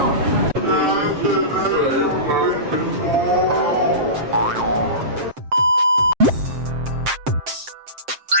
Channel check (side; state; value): left; late; 7.6 ms